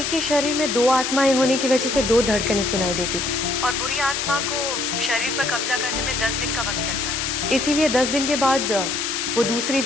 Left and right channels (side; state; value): left; noise; hiss, 1 dB below the sound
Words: ही शरीर में 2 आत्माएं होने की वजह से 2 धड़कनें सुनाई देती थी और बुरी आत्मा को शरीर पर कब्जा करने में 10 दिन का वक्त लगता था। इसीलिए 10 दिन के बाद वो दूसरी